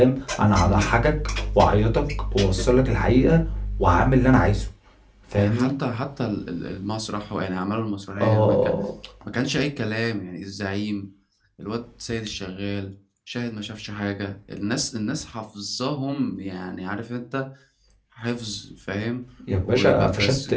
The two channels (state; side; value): identical; both; correlation 1.00